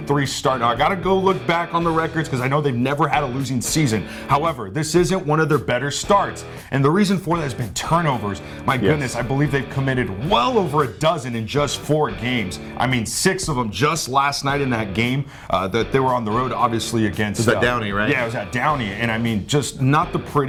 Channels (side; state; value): both; identical; correlation 1.00